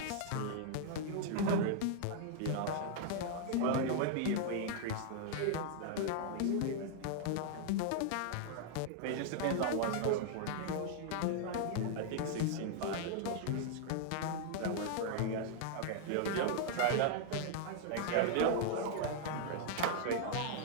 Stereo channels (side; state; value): both; different; correlation 0.00